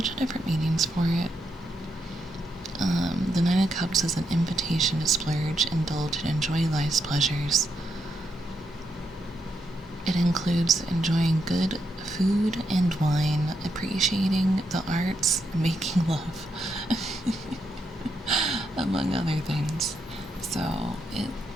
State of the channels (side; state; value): both; normal; correlation 0.81